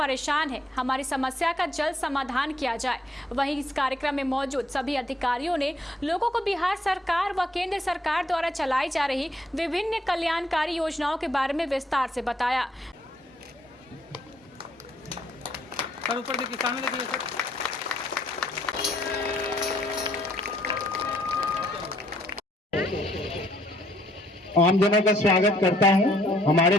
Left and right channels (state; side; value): normal; both; correlation 0.68